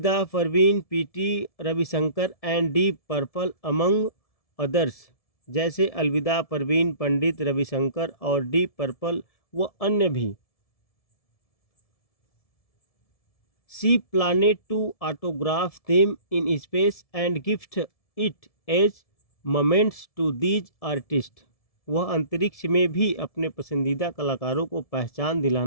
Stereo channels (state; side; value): late; right; 1.7 ms